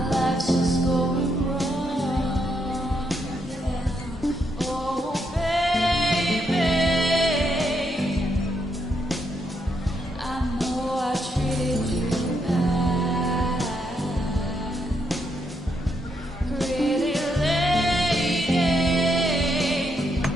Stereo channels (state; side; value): normal; both; correlation 0.78